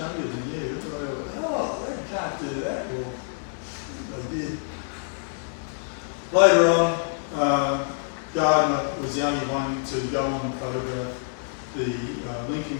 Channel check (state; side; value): silent; right; digital silence